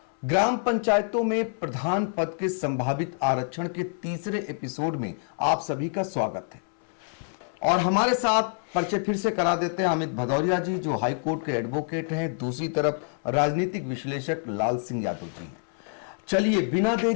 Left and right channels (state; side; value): silent; right; 60 dB below the other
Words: ग्राम पंचायतों में प्रधान पद के संभावित आरक्षण के तीसरे एपिसोड में आप सभी का स्वागत है। और हमारे साथ परिचय फिर से करा देते हैं अमित भदौरिया जी, जो हाई कोर्ट के एडवोकेट हैं। दूसरी तरफ राजनीतिक विश्लेषक लाल सिंह यादव जी हैं। चलिए बिना